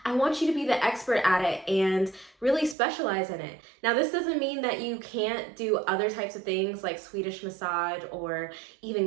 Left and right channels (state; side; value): drops out; left; at 2.8 s